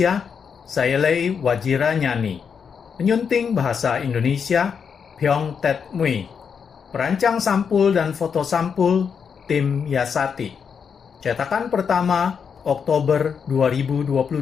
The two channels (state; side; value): quieter; right; 6.6 dB